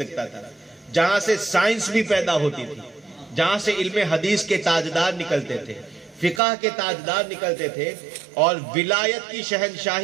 رکھتا تھا، جہاں سے سائنس بھی پیدا ہوتی تھی، جہاں سے علم حدیث کے تاجدار نکلتے تھے، فقہ کے تاجدار نکلتے تھے، اور ولایت کی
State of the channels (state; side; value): drops out; left; at 6.4 s